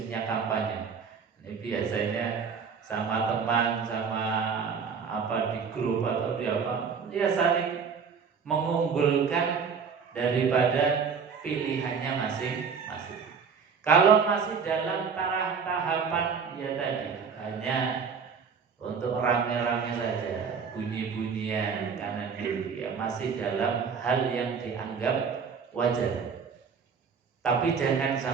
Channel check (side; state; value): left; quieter; 6.1 dB